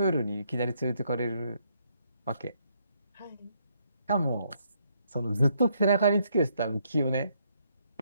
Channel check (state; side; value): inverted; both; correlation -0.73